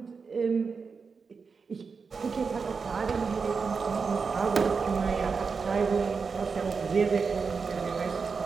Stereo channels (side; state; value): left; quieter; 5.2 dB